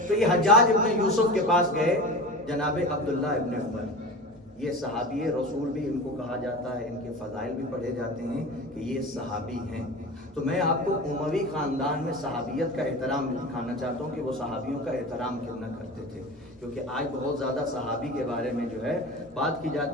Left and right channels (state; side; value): normal; both; correlation 0.31